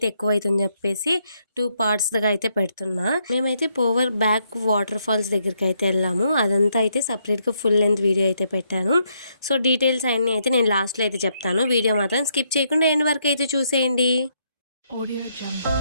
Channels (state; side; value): inverted; both; correlation -0.75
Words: ఎక్కువ అవుతుందని చెప్పేసి 2 పార్ట్స్గా అయితే పెడుతున్నా. మేమైతే పోవర్ బ్యాక్ వాటర్ ఫాల్స్ దగ్గరికి అయితే వెళ్ళాము. అదంతా అయితే సపరేట్గా ఫుల్ లెంత్ వీడియో అయితే పెట్టాను. సో డీటెయిల్స్ అన్నీ అయితే నేను లాస్ట్లో అయితే చెప్తాను. వీడియో మాత్రం స్కిప్ చేయకుండా ఎండ్ వరకు అయితే చూసేయండి.